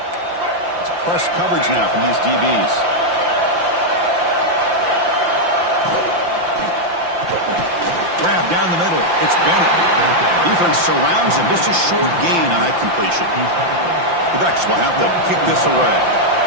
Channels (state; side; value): late; left; 5.8 ms